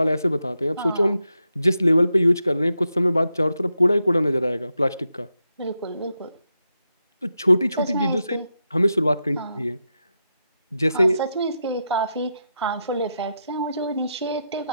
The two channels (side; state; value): both; inverted; correlation -0.86